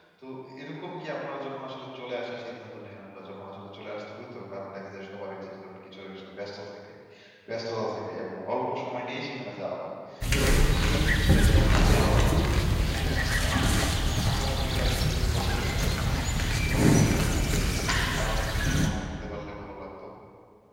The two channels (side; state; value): both; identical; correlation 1.00